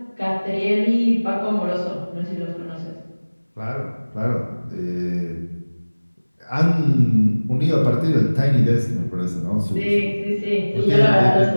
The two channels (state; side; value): inverted; both; correlation -1.00